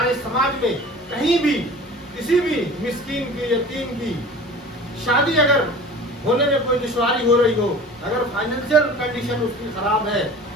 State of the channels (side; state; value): both; normal; correlation 0.40